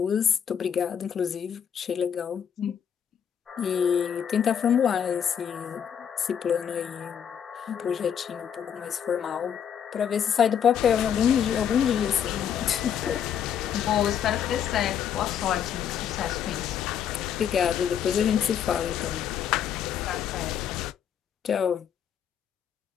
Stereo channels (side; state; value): right; quieter; 8.5 dB